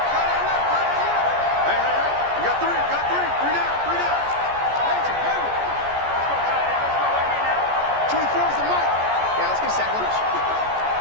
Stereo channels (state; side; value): late; left; 14 ms